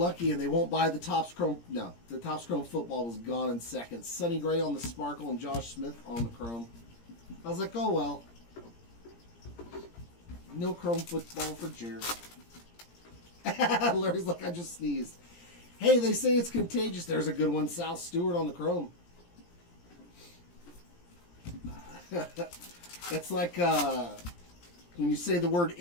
and they won't buy the Topps Chrome. No, the Topps Chrome football was gone in seconds. Sonny Gray on the sparkle and Josh Smith on the chrome. I was like, oh well. No chrome football for Jared. Larry's like, I just sneezed. Hey, they say it's contagious. There's a good one. Sal Stewart on the chrome. It's like when you say the word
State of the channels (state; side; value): late; right; 17 ms